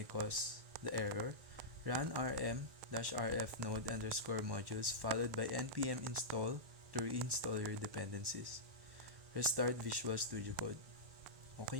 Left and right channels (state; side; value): late; left; 1.1 ms